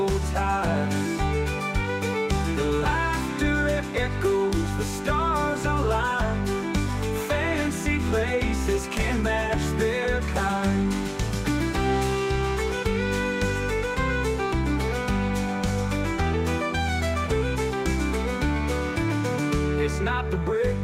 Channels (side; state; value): both; identical; correlation 1.00